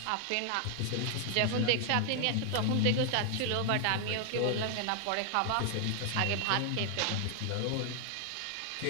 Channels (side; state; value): both; different; correlation 0.00